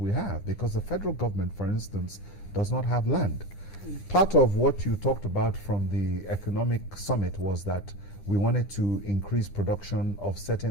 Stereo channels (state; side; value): late; right; 9.7 ms